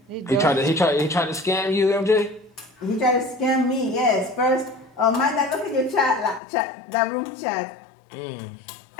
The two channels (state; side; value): drops out; right; at 6.4 s